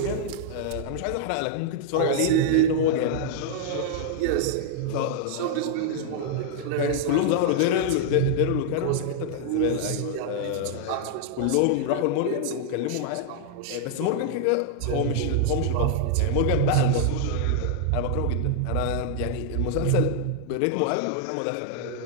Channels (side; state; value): both; different; correlation -0.01